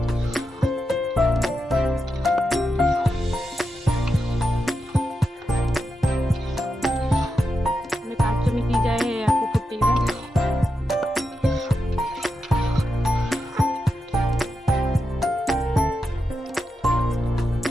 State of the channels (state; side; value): normal; both; correlation 0.87